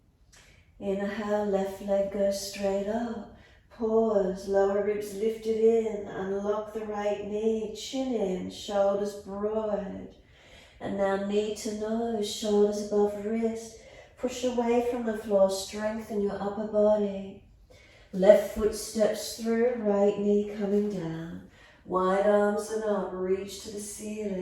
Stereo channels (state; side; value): identical; both; correlation 1.00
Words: Inhale, left leg goes straight up. Pause, lower ribs lifted in. Unlock the right knee, chin in, shoulders broad. And now knee to nose, shoulders above wrist. Push away from the floor, strengthen your upper body. Left foot steps through, right knee coming down. Wide arms and up, reach to the